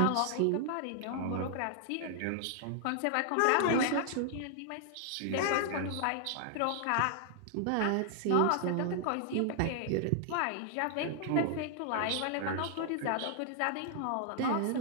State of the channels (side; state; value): both; different; correlation -0.01